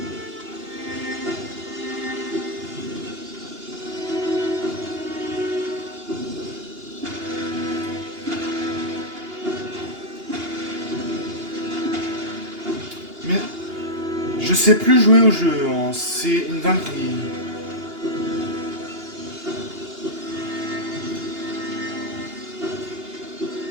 Mais je sais plus jouer au jeu, hein. C'est une dinguerie.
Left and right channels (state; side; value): late; left; 2.8 ms